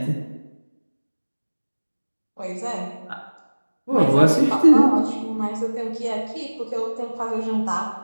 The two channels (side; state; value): both; inverted; correlation -1.00